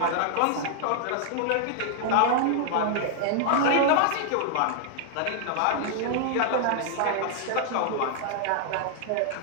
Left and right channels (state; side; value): different; both; correlation -0.01